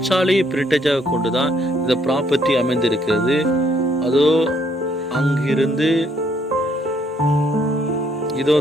சாலையை பிரிட்டேஜாக கொண்டுதான் இந்த ப்ராப்பர்ட்டி அமைந்திருக்கிறது. அதோ அங்கிருந்து இதோ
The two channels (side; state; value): both; normal; correlation 0.69